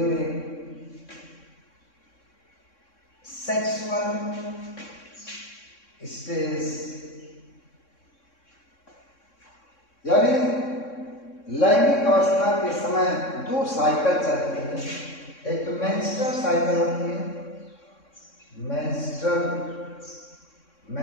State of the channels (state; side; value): late; right; 3.6 ms